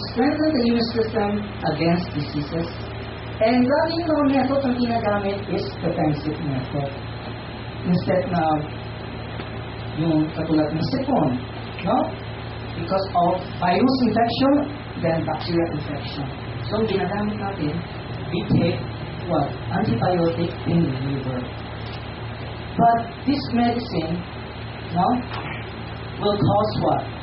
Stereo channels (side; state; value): both; identical; correlation 1.00